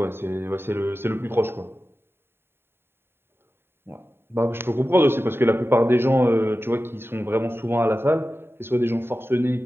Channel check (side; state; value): left; late; 0.11 ms